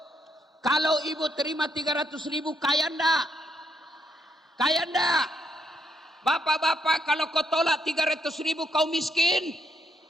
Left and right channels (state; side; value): normal; both; correlation 0.76